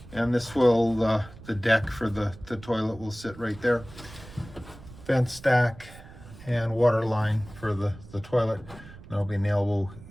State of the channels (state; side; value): noise; right; rumble, 18 dB below the sound